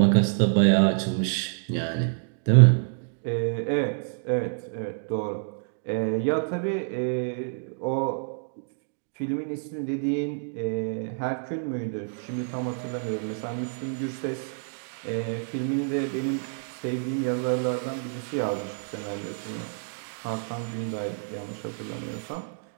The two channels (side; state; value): left; silent; digital silence